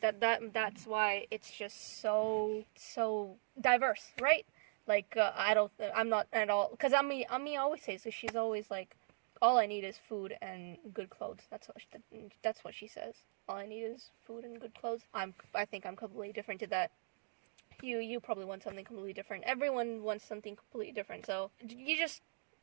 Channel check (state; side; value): silent; left; digital silence